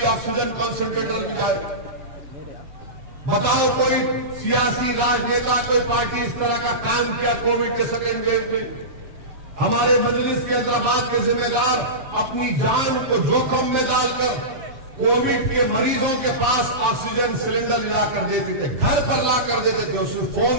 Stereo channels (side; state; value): left; late; 7.7 ms